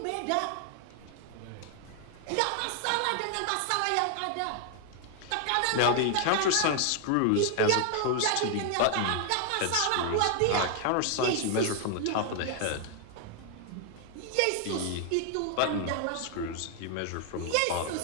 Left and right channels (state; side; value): different; both; correlation 0.00